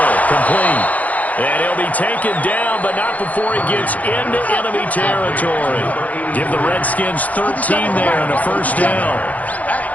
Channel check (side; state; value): right; late; 0.075 ms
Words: complete. And he'll be taken down, but not before he gets into enemy territory. Give the Redskins 13 there and a first down.